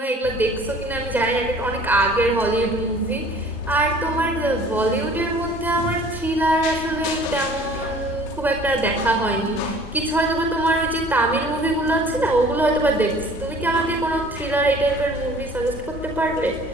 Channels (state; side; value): normal; both; correlation 0.50